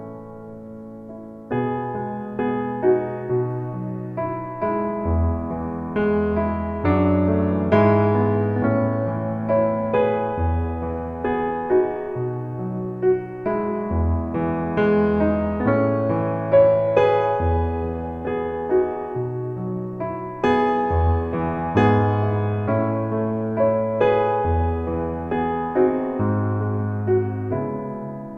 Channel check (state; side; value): identical; both; correlation 1.00